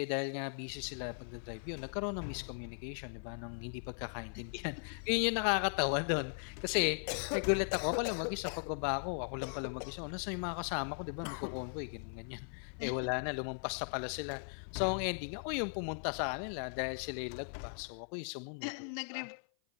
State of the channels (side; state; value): right; silent; 52 dB below the other